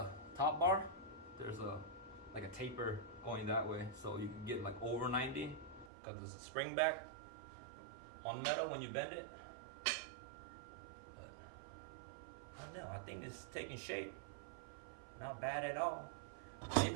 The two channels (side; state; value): left; drops out; at 5.9 s